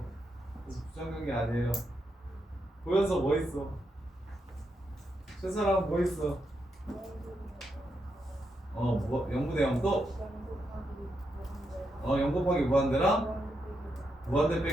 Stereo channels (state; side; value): normal; both; correlation 0.83